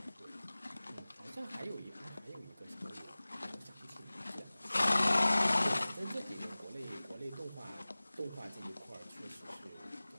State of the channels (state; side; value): inverted; both; correlation -0.99